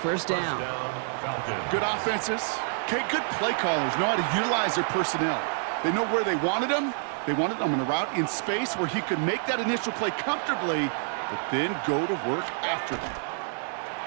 down. Good offenses. Okay, good play callers know how to utilize their personnel. They know where they wanted them. They wanted them on a route in space where he could make that initial play comfortably, but then go to work after them.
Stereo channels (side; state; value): left; silent; 60 dB below the other